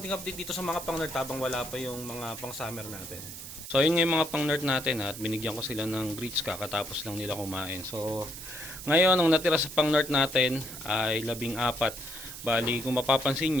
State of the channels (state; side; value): noise; right; hiss, 11 dB below the sound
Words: update dito sa mga pang-nerd habang wala pa yung mga pang-summer natin. So yun nga yung mga pang-nerd natin at binigyan ko sila ng greets kakatapos lang nila kumain. So ngayon ang natira sa pang-nerd natin ay 14. Bali kung mapapansin